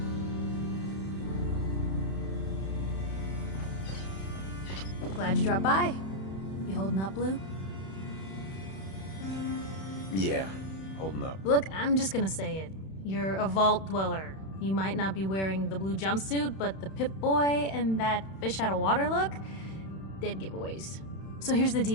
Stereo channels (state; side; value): late; right; 31 ms